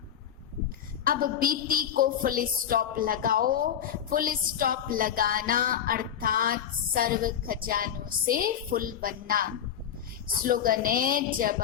अब बीती को फुल स्टॉप लगाओ। फुल स्टॉप लगाना अर्थात सर्व खजानों से फुल बनना। स्लोगन है, जब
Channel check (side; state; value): right; quieter; 9.2 dB